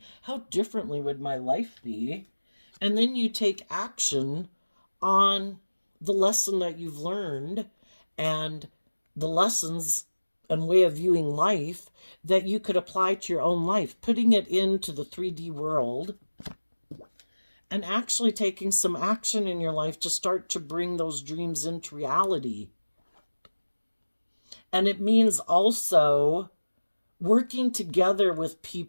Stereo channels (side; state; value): both; inverted; correlation -1.00